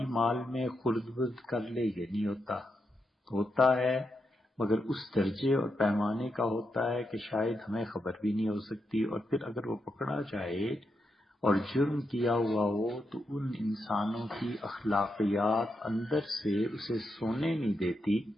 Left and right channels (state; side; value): normal; both; correlation 0.84